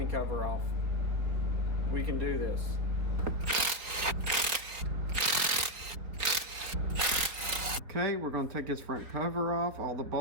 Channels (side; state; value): left; late; 4.2 ms